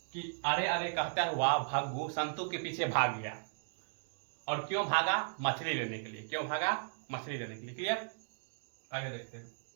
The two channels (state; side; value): silent; left; digital silence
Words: कि अरे अरे कहता हुआ भग्गू संतु के पीछे भाग गया। और क्यों भागा, मछली लेने के लिए। क्यों भागा, मछली लेने के लिए। क्लियर, आगे देखते हैं।